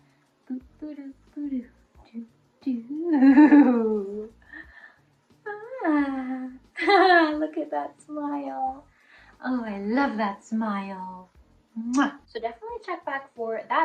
Boo boo doo boo doo doo doo. Ah, look at that smile. Oh, I love that smile. Mwah. So definitely check back for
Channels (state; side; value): identical; both; correlation 1.00